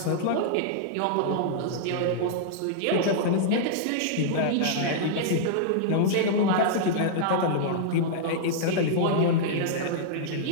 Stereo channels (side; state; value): both; different; correlation -0.02